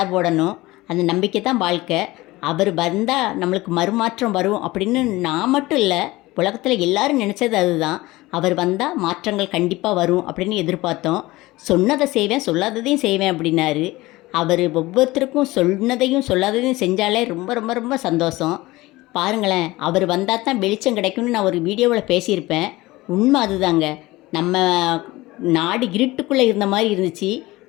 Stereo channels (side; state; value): right; quieter; 19.5 dB